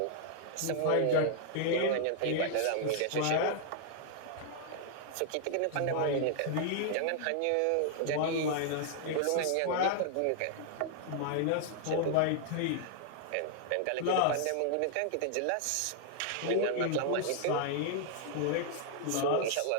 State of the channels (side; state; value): both; different; correlation -0.01